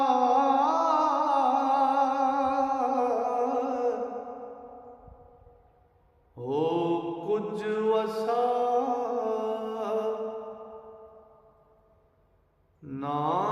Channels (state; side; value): identical; both; correlation 1.00